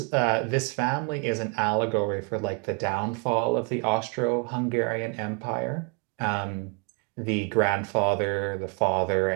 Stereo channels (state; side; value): quieter; left; 36.6 dB